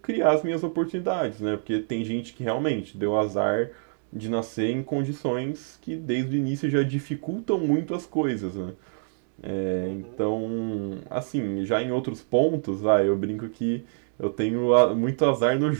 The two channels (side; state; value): left; silent; digital silence